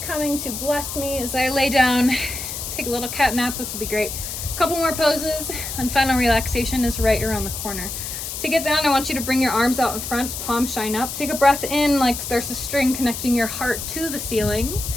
coming to bless me as I lay down. Take a little cat nap. This will be great. A couple more poses and final relaxation is right around the corner. To get down, I want you to bring your arms out in front, palms shine up. Take a breath in like there's a string connecting your heart to the ceiling.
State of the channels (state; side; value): noise; left; hiss, 6 dB below the sound